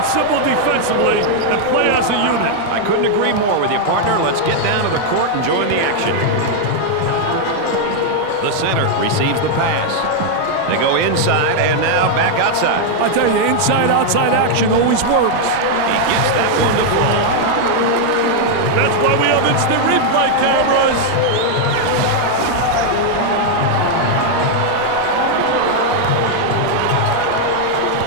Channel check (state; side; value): different; both; correlation 0.00